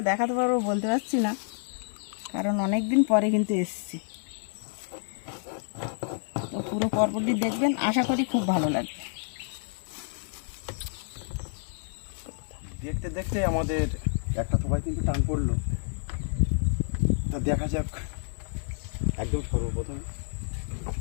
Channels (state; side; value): silent; right; 59 dB below the other